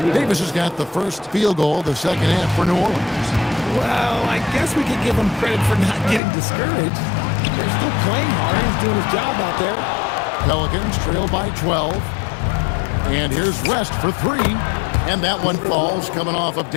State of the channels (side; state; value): right; drops out; at 6.2 s